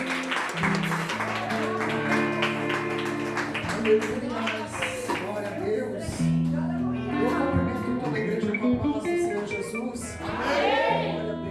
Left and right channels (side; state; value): both; identical; correlation 1.00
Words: a Deus. Eu cumprimento toda a igreja com a paz do Senhor Jesus. Amém. Glória a